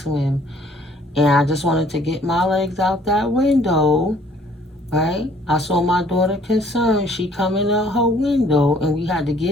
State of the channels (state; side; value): normal; both; correlation 0.59